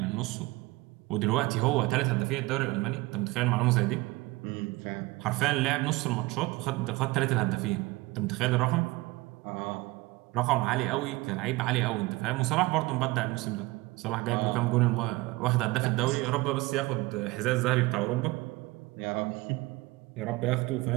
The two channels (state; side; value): quieter; left; 21.3 dB